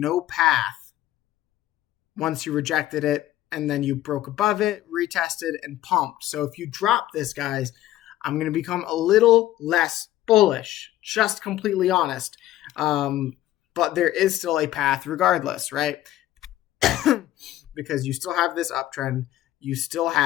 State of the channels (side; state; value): right; quieter; 14.2 dB